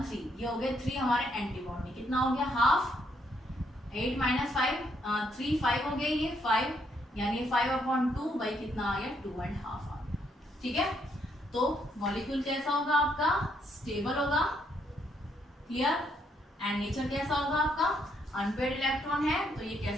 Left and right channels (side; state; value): both; normal; correlation 0.73